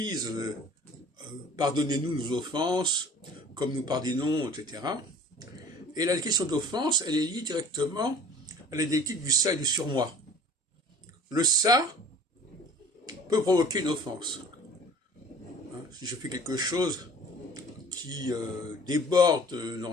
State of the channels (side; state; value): both; normal; correlation 0.47